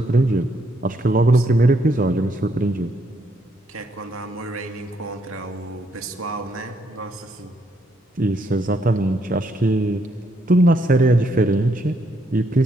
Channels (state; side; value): normal; both; correlation 0.74